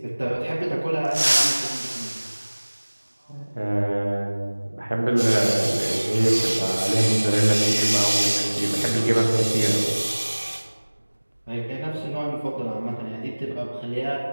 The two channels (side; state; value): both; inverted; correlation -1.00